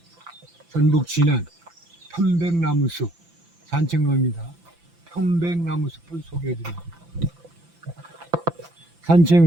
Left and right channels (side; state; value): left; late; 5.9 ms